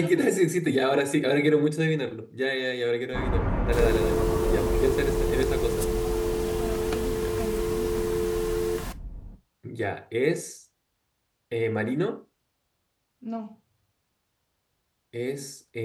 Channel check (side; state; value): both; identical; correlation 1.00